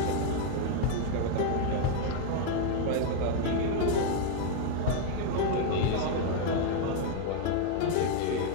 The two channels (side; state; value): both; different; correlation 0.00